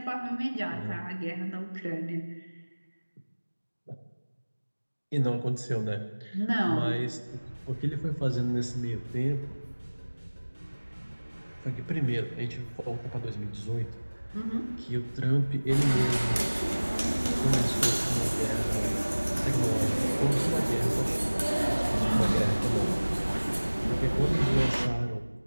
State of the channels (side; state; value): both; inverted; correlation -1.00